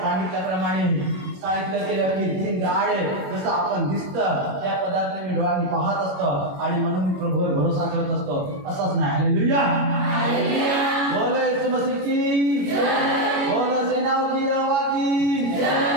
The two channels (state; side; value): late; left; 21 ms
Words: सांगितलं केलं की दिन दहाडे जसं आपण दिसतं त्या पदार्थाने मी डोळ्यांनी पाहत असतो आणि म्हणून मी प्रभूवर भरोसा करत असतो. असंच नाही. हालेलुया. बोलो येशू मसीह की जय. बोलो सेनाओं की यहोवा की जय.